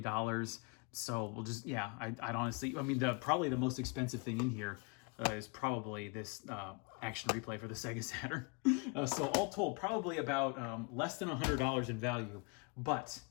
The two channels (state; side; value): quieter; right; 32.7 dB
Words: So we'll just, yeah, I'd honestly, probably the most expensive thing in here is probably this action replay for the Sega Saturn. So all told, probably about less than $100 in value, but